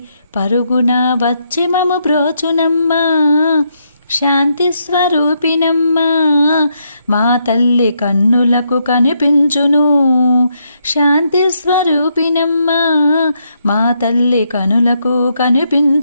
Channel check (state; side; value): inverted; both; correlation -0.77